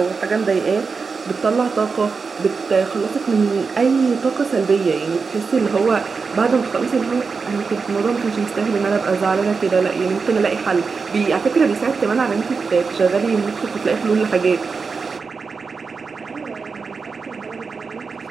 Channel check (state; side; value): quieter; left; 4.9 dB